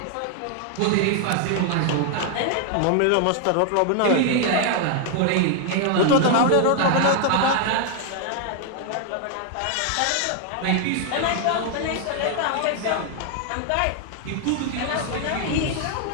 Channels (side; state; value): both; different; correlation 0.00